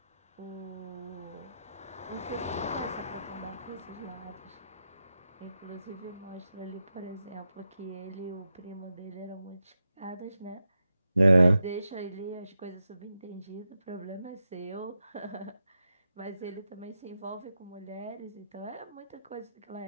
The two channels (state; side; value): inverted; both; correlation -0.87